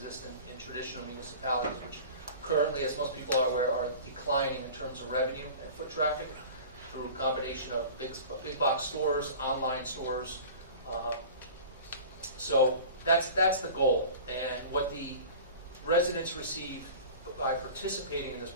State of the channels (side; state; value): both; inverted; correlation -0.39